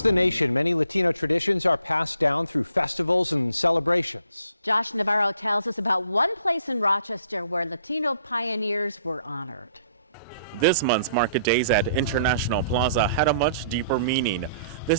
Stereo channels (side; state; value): both; inverted; correlation -0.63